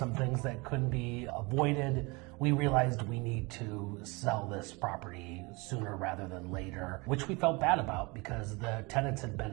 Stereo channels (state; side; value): quieter; left; 26.7 dB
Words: things that couldn't be avoided. We realized we need to sell this property sooner rather than later, which we felt bad about because the tenants had